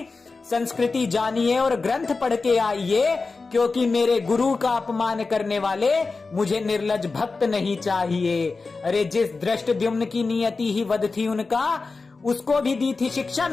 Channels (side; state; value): right; quieter; 4.0 dB